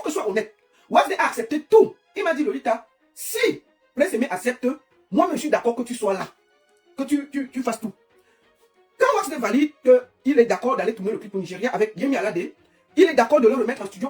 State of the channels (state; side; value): identical; both; correlation 1.00